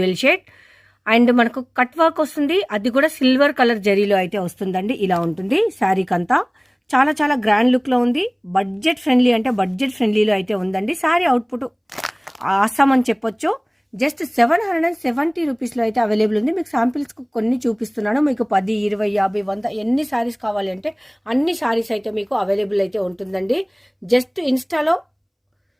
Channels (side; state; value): both; identical; correlation 1.00